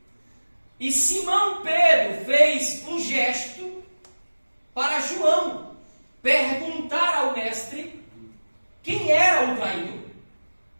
E Simão Pedro fez um gesto para João perguntar ao Mestre quem era o traidor.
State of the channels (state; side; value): inverted; both; correlation -1.00